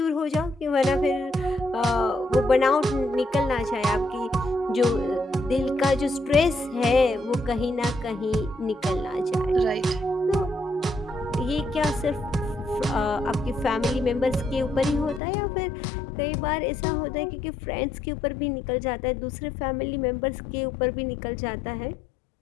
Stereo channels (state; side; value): drops out; right; at 15.2 s